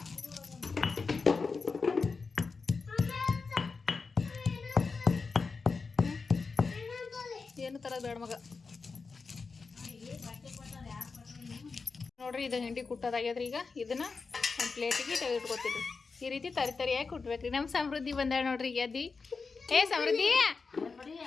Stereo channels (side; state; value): right; quieter; 4.6 dB